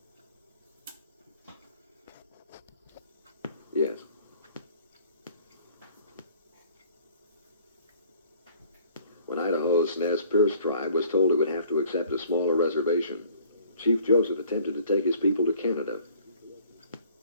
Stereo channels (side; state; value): both; inverted; correlation -0.54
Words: Yes. When Idaho's Nez Perce tribe was told it would have to accept a smaller reservation, Chief Joseph attempted to take his people to Canada.